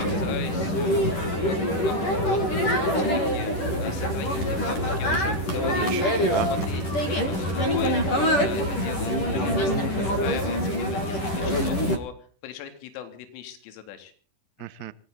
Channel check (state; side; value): late; right; 10 ms